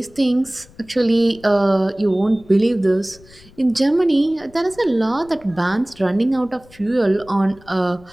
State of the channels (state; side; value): noise; left; rumble, 25 dB below the sound